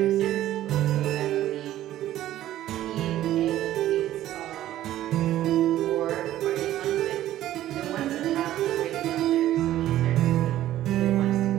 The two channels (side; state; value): left; quieter; 13.5 dB